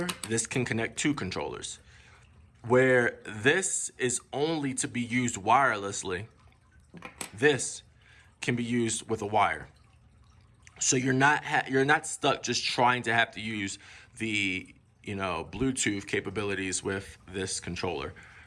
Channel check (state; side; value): identical; both; correlation 1.00